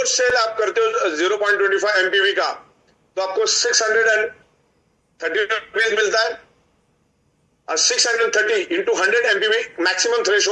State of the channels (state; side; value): identical; both; correlation 1.00